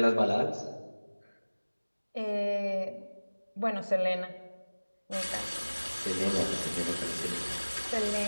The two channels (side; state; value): both; inverted; correlation -1.00